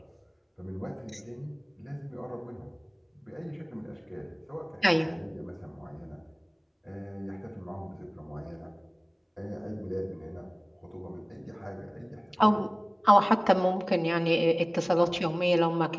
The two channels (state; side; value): identical; both; correlation 1.00